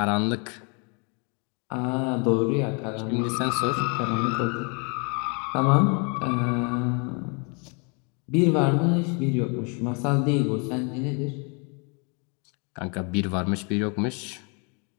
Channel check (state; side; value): quieter; right; 34.7 dB